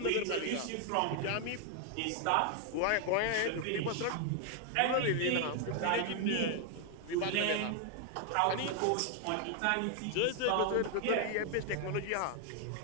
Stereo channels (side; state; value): both; different; correlation 0.01